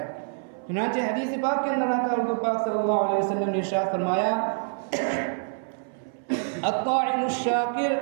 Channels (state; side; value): silent; left; 61 dB below the other